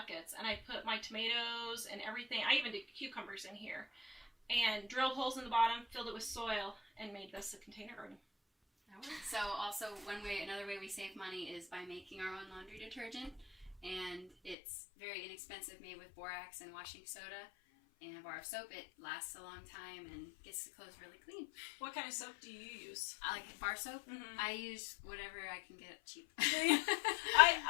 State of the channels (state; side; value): drops out; right; at 14.6 s